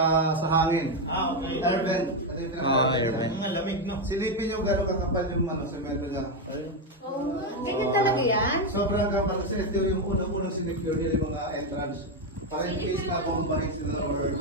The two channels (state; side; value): normal; both; correlation 0.06